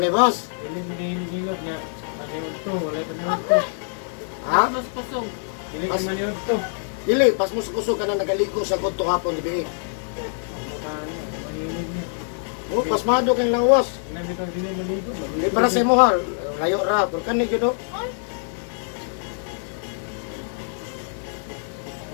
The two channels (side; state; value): right; silent; 62 dB below the other